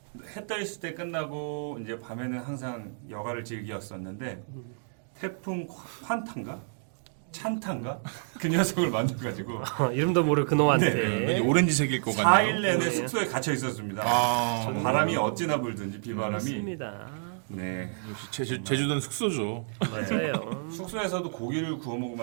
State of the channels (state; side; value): silent; left; digital silence